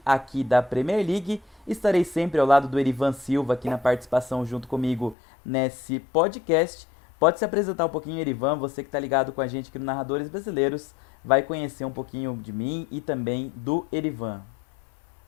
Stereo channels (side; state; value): right; drops out; at 5.2 s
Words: aqui da Premier League. Estarei sempre ao lado do Erivan Silva aqui na participação junto comigo nesse podcast. Pode se apresentar um pouquinho, Erivan, você que está ligado com a gente aqui no Narradores Brasileiros, vai conhecer um pouquinho de mim e também do Erivan.